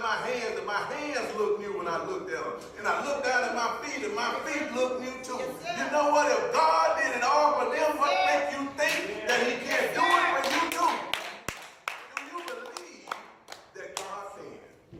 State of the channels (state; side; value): identical; both; correlation 1.00